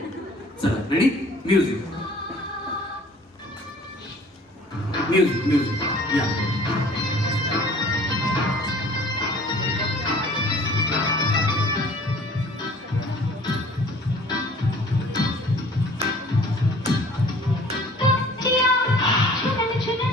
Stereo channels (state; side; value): normal; both; correlation 0.51